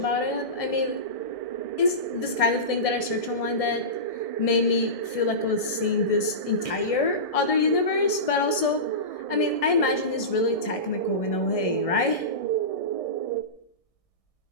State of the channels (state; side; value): late; right; 1.6 ms